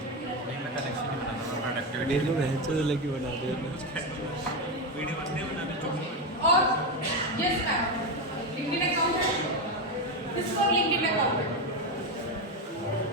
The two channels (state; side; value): normal; both; correlation 0.12